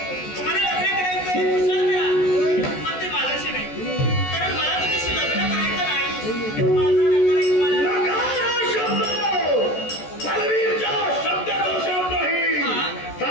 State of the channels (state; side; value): late; right; 14 ms